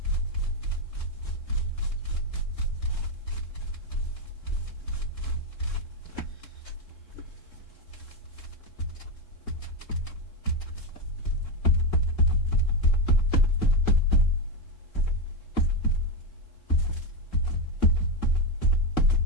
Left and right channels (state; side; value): late; right; 3.7 ms